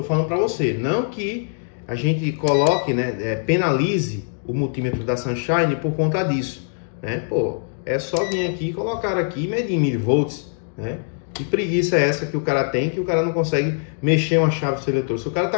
falando para você, não que a gente coloque, né, penalize o multímetro da Sunshine por conta disso, né? Pô, é só vir aqui, colocar aqui e medir em milivolts, né? Que preguiça é essa que o cara tem, que o cara não consegue mexer uma chave seletora? Se o cara tá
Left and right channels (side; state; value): right; silent; digital silence